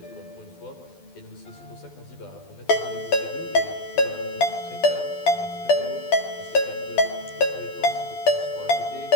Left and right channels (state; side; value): late; right; 12 ms